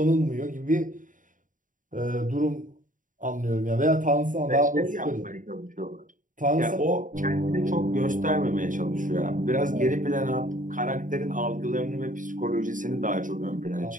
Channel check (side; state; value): left; late; 0.38 ms